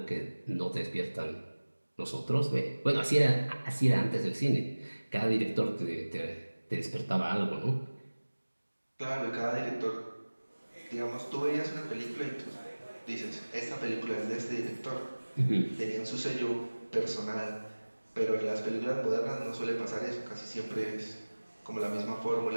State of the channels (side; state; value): both; inverted; correlation -1.00